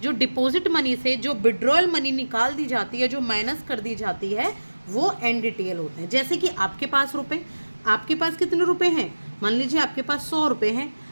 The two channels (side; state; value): both; inverted; correlation -1.00